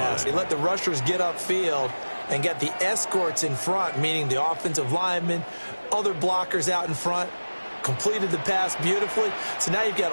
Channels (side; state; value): both; inverted; correlation -1.00